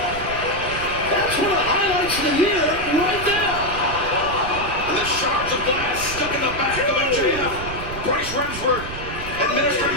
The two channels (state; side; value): noise; right; rumble, 10 dB below the sound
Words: That's one of the highlights of the year right there. And the shards of glass stuck in the back of MJF. Bryce Remsburg administering